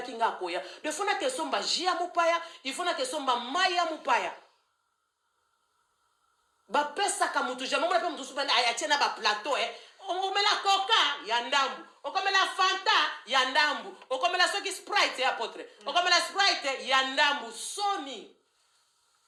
kinga koya de fona ke somba jia mupaya il faut na ke somba maya mupaya ba pesa ka mutu jamais mo na pe mutu subana ayachena ba plateau okomela coca ya ndambu okomela fanta ya ndambu okomela soki sprite ya potre okomela sprite ya ndambu soni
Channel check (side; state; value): both; identical; correlation 1.00